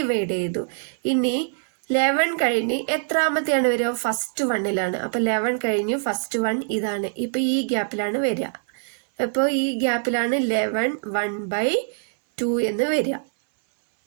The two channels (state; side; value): silent; left; digital silence